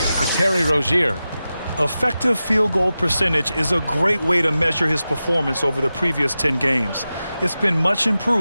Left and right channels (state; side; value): inverted; both; correlation -0.93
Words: for Terry Rozier. Effective field goal percentage is a great way to measure his performance over the previous 10 games. It's been much